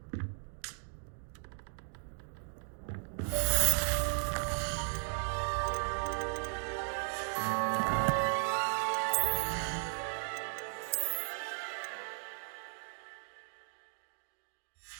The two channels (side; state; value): left; silent; 54 dB below the other